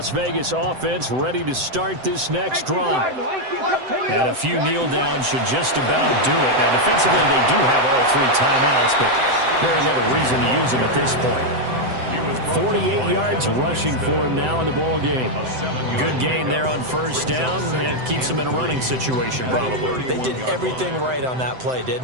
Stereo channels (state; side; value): late; left; 7.8 ms